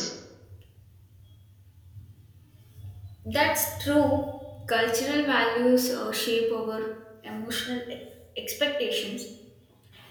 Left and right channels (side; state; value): both; identical; correlation 1.00